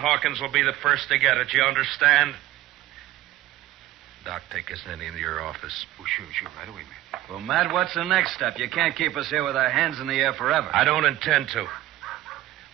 will be the first to get it. You understand? Doc, take us into your office. Oh, sure, right away, man. Well, Matt, what's the next step? You can't keep us here with our hands in the air forever. I don't intend to.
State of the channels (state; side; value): quieter; left; 15.1 dB